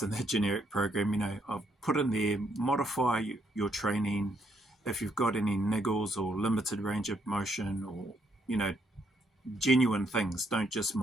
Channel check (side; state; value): both; normal; correlation 0.74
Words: in the generic program, I've put in there, modify your training if you've got any niggles or limited range of motion or genuine things. Don't just